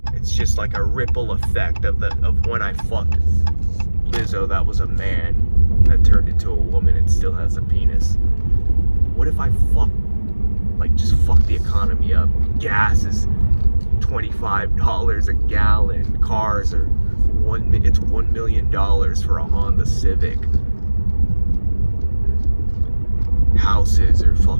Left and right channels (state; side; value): inverted; both; correlation -1.00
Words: It's just like a ripple effect of when I fucked Lizzo, that was a man that turned into a woman and still has a penis. What if I just fuck the economy up? Gas is $25 a gallon. Cars are it's $1 million for a Honda Civic. Houses are